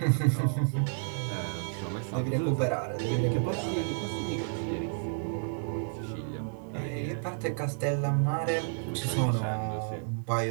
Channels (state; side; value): silent; left; digital silence